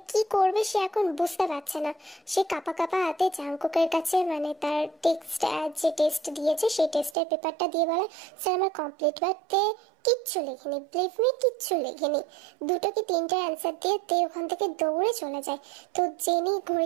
কি করবে সে এখন বুঝতে পারছে না। সে কাপা কাপা হাতে জাংকুকের কাছে, মানে তার টেক্সট যে টেস্ট দিয়েছে সেই টেস্টের পেপারটা দিয়ে বলে, স্যার আমার কমপ্লিট। বাট তে কিচ্ছু লেখেনি, বিলিভ মি, কিচ্ছু লেখেনি। দুটো কি তিনটে অ্যান্সার দিয়ে তে ওখান থেকে দৌড়ে চলে যায়। তো জেনি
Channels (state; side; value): drops out; left; at 7.2 s